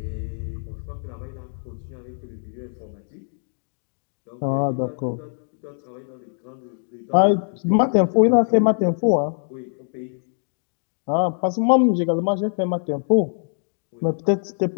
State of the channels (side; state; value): right; silent; digital silence